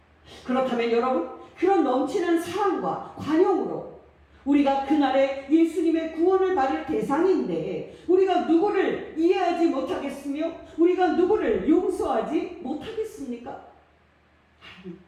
그렇다면 여러분, 그런 넘치는 사랑과 관용으로 우리가 그날에 예수님의 구원을 받을 대상인데 우리가 누구를 이해하지 못하겠으며 우리가 누구를 용서하지 못하겠습니까?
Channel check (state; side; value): identical; both; correlation 1.00